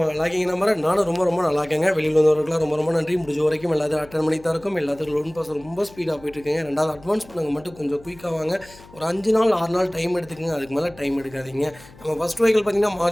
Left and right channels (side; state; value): left; noise; hum, 22 dB below the sound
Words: நல்லா இருக்கீங்க நம்புற. நானும் ரொம்ப நல்லா இருக்கேங்க. வெளியில் வந்தவர்களுக்குலாம் ரொம்ப நன்றி. முடிஞ்ச வரைக்கும் எல்லாத்தையும் அட்டன் பண்ணி தான் இருக்கும். எல்லாத்துக்கும் லோன் ப்ராசஸ் ரொம்ப ஸ்பீடாக போயிட்டு இருக்கீங்க. ரெண்டாவது அட்வான்ஸ் பண்ணுங்க மட்டும் கொஞ்சம் குயிக்காக வாங்க. ஒரு 5 நாள் 6 நாள் டைம் எடுத்துக்கங்க. அதுக்கு மேலே டைம் எடுக்காதீங்க. நம்ம ஃபஸ்ட் வெஹிக்கிள் பார்த்தீங்கன்னா